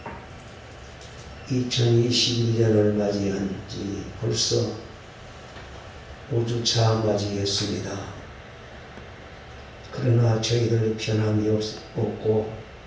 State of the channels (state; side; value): identical; both; correlation 1.00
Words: 2021년을 맞이한 지 벌써 5주차 맞이했습니다. 그러나 저희들 변함이 없고